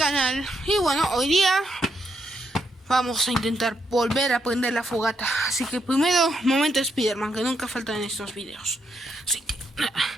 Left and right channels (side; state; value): both; normal; correlation 0.79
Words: Y bueno, hoy día vamos a intentar volver a prender la fogata. Así que primero, momento Spiderman, que nunca falta en estos videos. Así que,